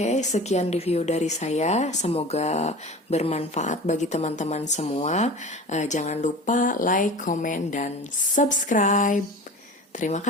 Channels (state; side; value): normal; both; correlation 0.36